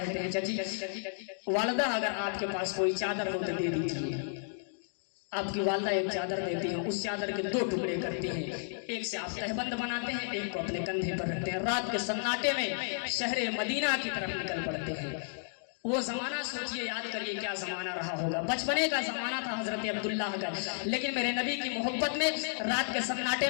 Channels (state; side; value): silent; right; digital silence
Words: ہیں چچی والدہ اگر آپ کے پاس کوئی چادر ہو تو دے دیجیے۔ آپ کی والدہ ایک چادر دیتی ہیں، اس چادر کے 2 ٹکڑے کرتی ہیں، ایک سے آپ تہبند بناتے ہیں، ایک کو اپنے کندھے پر رکھتے ہیں، رات کے سناٹے میں شہر مدینہ کی طرف نکل پڑتے ہیں۔ وہ زمانہ سوچئے، یاد کریے کیا زمانہ رہا ہوگا، بچپنے کا زمانہ تھا حضرت عبداللہ کا، لیکن میرے نبی کی محبت میں رات کے سناٹے